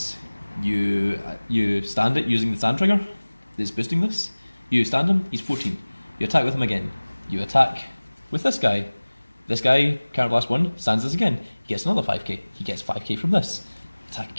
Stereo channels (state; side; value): inverted; both; correlation -1.00